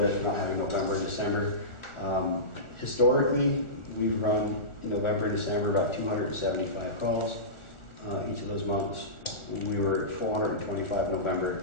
for not having November and December. Historically, we've run in November and December about 275 calls. each of those months. We were at 425 in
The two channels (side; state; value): right; late; 1.4 ms